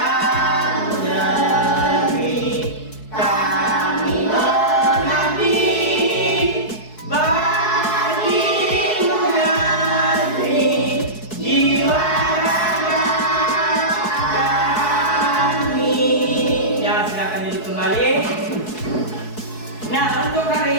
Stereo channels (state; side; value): late; right; 4.7 ms